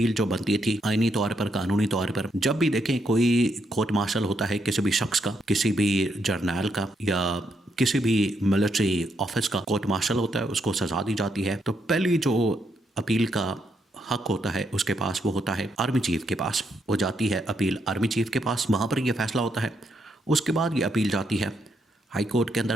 جو بنتی تھی آئینی طور پر، قانونی طور پر، جب بھی دیکھیں کوئی کورٹ مارشل ہوتا ہے کسی بھی شخص کا، کسی بھی جرنیل کا یا کسی بھی ملٹری آفس کا کورٹ مارشل ہوتا ہے، اس کو سزا دی جاتی ہے، تو پہلی جو اپیل کا حق ہوتا ہے اس کے پاس وہ ہوتا ہے آرمی چیف کے پاس۔ وہ جاتی ہے اپیل آرمی چیف کے پاس، وہاں پر یہ فیصلہ ہوتا ہے۔ اس کے بعد یہ اپیل جاتی ہے ہائی کورٹ کے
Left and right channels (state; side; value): normal; both; correlation 0.78